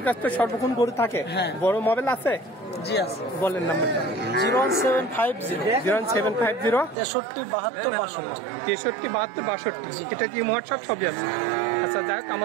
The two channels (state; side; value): drops out; left; at 7.0 s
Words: কাছে তো সর্বক্ষণ গরু থাকে? হ্যাঁ। বড় মোবাইল আছে? জি আছে। বলেন নাম্বারটা। 01750 01750 63 72 63 এটা কি হোয়াটসঅ্যাপ সবই আছে? আচ্ছা, যাই হোক,